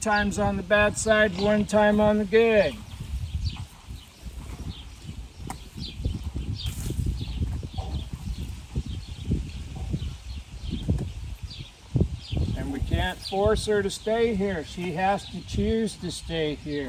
on the bad side, 1 time on the good. And we can't force her to stay here. She has to choose to stay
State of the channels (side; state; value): both; identical; correlation 1.00